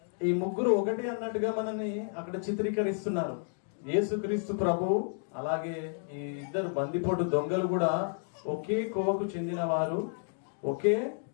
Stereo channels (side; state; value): right; silent; digital silence